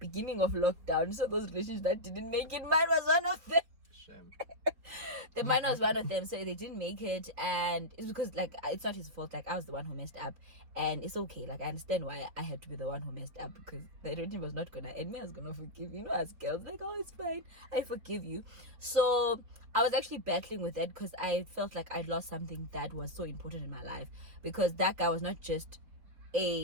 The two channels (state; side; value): late; left; 4.2 ms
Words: of lockdown. So those relationships that didn't make it, mine was one of them. Mine was one of them, so they didn't make it, and it's because like it's not his fault. Like, I was the one who messed up, and it's okay. Like, I understand why I had to be the one who messed up, because the relationship was not gonna end. Me, I was gonna forgive, as girls, like, oh, it's fine, I forgive you. So I was actually battling with that, because I felt like I'd lost something that was so important in my life, because that guy was not just